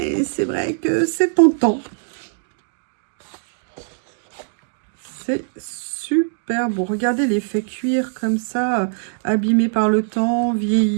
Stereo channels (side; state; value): left; silent; digital silence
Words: c'est vrai que c'est tentant. C'est super beau. Regardez l'effet cuir comme ça, abîmé par le temps,